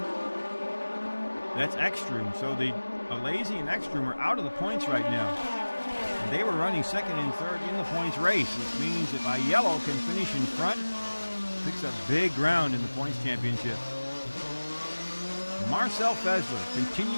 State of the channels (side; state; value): both; inverted; correlation -1.00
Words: That's Ekstrom. So the Alesi and Ekstrom are out of the points right now. And they were running second and third in the points race, which means if Aiello can finish in front, picks up big ground in the points championship. Marcel Fessler